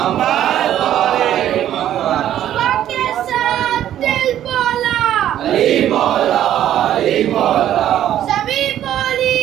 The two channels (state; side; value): quieter; left; 11.5 dB